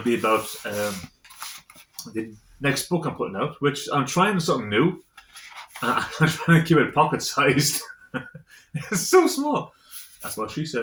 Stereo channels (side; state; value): both; identical; correlation 1.00